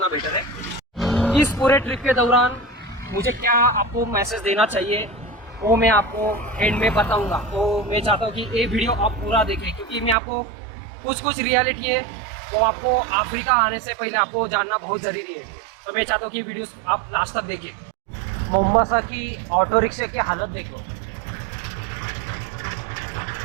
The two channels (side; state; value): left; drops out; at 10.2 s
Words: बेटर है। इस पूरे ट्रिप के दौरान मुझे क्या आपको मैसेज देना चाहिए वो मैं आपको एंड में बताऊंगा। तो मैं चाहता हूँ कि ये वीडियो आप पूरा देखें, क्योंकि मैं आपको कुछ रियलिटी है वो आपको अफ्रीका आने से पहले आपको जानना बहुत ज़रूरी है। तो मैं चाहता हूँ कि वीडियोस आप लास्ट तक देखें। मोम्बासा की ऑटो रिक्शा की हालत देखो।